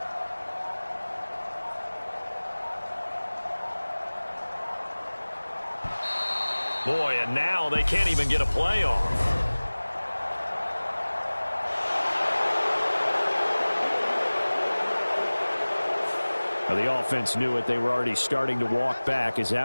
Boy, and now they can't even get a play off. Now the offense knew it. They were already starting to walk back as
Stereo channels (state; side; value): inverted; both; correlation -1.00